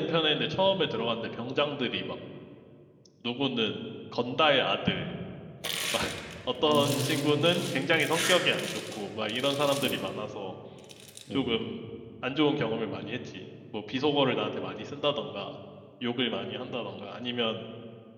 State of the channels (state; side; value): identical; both; correlation 1.00